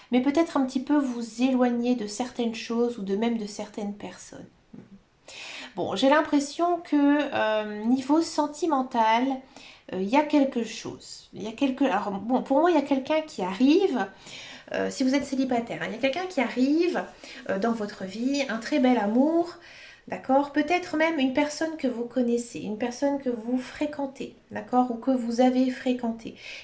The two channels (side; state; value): both; identical; correlation 1.00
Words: Mais peut-être un petit peu vous éloigner de certaines choses ou de même de certaines personnes. Bon, j'ai l'impression que niveau sentimental, il y a quelque chose. Il y a quelque... Alors, bon, pour moi, il y a quelqu'un qui arrive, si vous êtes célibataire, hein, il y a quelqu'un qui arrive dans votre vie, un très bel amour, d'accord? Peut-être même une personne que vous connaissez, une personne que vous fréquentez, d'accord? Ou que vous avez fréquenté.